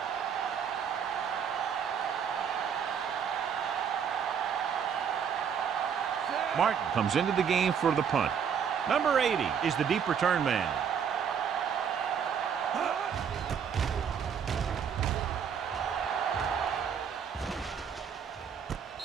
Martin comes into the game for the punt. Number 80 is the deep return man.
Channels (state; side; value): quieter; left; 7.5 dB